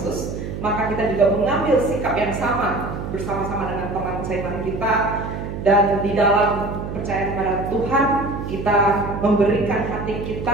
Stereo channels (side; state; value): right; noise; hum, 7 dB below the sound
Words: maka kita juga mengambil sikap yang sama bersama-sama dengan teman seiman kita. Dan di dalam percaya kepada Tuhan, kita memberikan hati